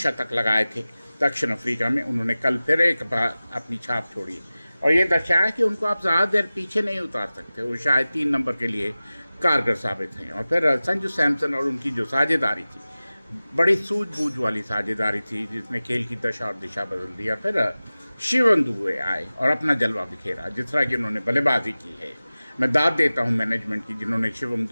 लगाए थे दक्षिण अफ्रीका में, उन्होंने कल फिर एक बार अपनी छाप छोड़ी और ये दर्शाया कि उनको आप ज़्यादा देर पीछे नहीं उतार सकते। वो शायद 3 नंबर के लिए कारगर साबित हैं। और फिर संजू सैमसन और उनकी जो साझेदारी थी, बड़ी सूझबूझ वाली साझेदारी थी, जिसने खेल की दशा और दिशा बदल दी। फिर शिवम दुबे आए और अपना जलवा बिखेरा, जिस तरह की उन्होंने बल्लेबाजी की है। मैं दाद देता हूं मैनेजमेंट की, जिन्होंने शिवम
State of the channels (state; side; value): inverted; both; correlation -0.97